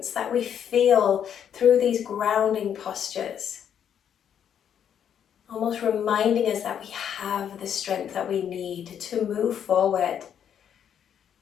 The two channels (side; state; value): right; quieter; 8.8 dB